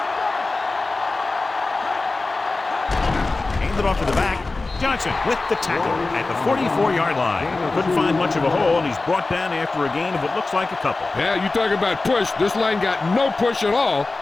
Handed off to the back. Johnson with the tackle at the 44-yard line. Couldn't find much of a hole, and he's brought down after a gain of what looks like a couple. Yeah, you talk about push. This line got no push at all,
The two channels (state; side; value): quieter; right; 3.4 dB